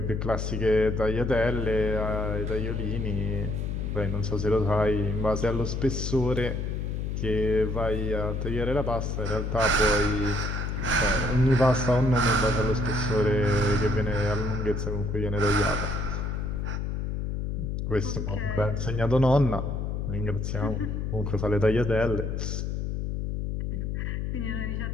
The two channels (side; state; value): left; noise; hum, 2 dB below the sound